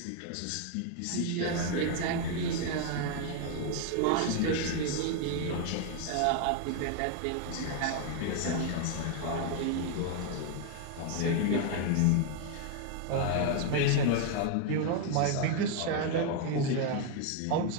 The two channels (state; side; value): different; both; correlation 0.00